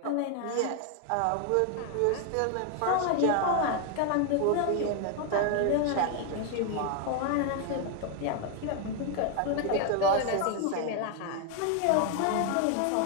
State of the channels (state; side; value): different; both; correlation 0.01